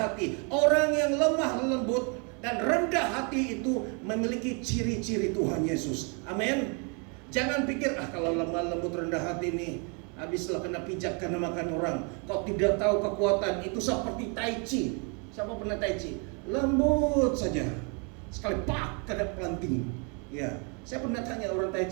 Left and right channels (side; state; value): left; quieter; 35.4 dB